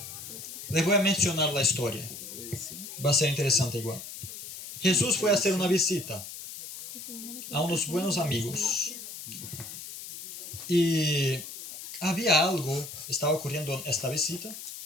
les voy a mencionar la historia. Va a ser interesante igual. Jesús fue a hacer una visita a unos buenos amigos. Y había algo, estaba ocurriendo en esta visita,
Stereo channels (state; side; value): noise; left; hiss, 11 dB below the sound